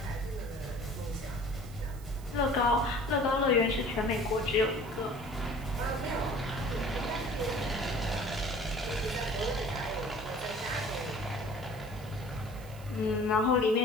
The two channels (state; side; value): noise; right; hiss, 21 dB below the sound